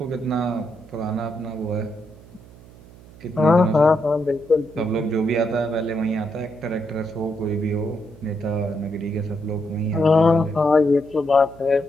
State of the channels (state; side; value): noise; right; hum, 22 dB below the sound